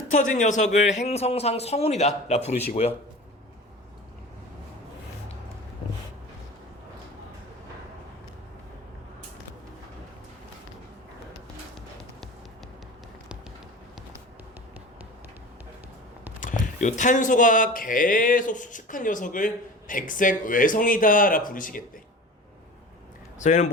녀석을 행성상 성운이다 라 부르시고요. 요 탄소가 계속 수축한 녀석을 백색 외성이다 라 부르시겠대. 저희는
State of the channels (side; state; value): both; normal; correlation 0.36